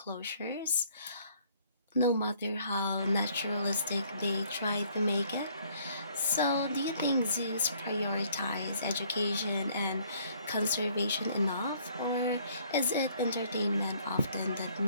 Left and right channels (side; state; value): both; inverted; correlation -0.62